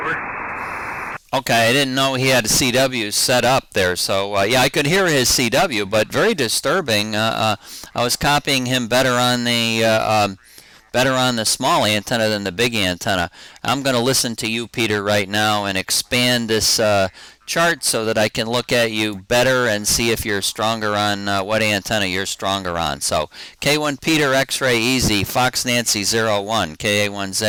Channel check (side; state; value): both; identical; correlation 1.00